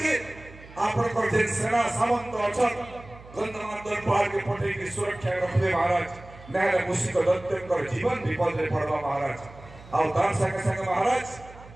आपणकर जे सेना सामंत अछन गंधमार्दन पहाड़ के पटे की सुरक्षा रखले महाराज नाले मुसिक दत्तकर जीवन विपद रे पड़वा महाराज आउ तार संगे संगे महाराज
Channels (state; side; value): noise; right; hum, 20 dB below the sound